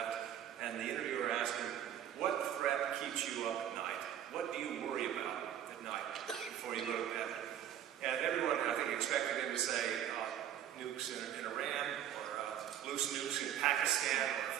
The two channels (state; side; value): quieter; left; 10.4 dB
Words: and the interviewer asked him, what threat keeps you up at night? What do you worry about at night before you go to bed? And everyone, I think, expected him to say nukes in Iran, or loose nukes in Pakistan, or